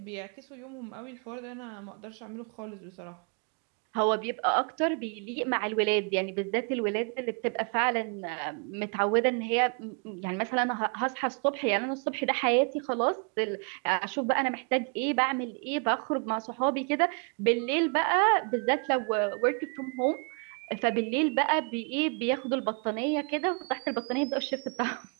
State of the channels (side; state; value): left; quieter; 37.4 dB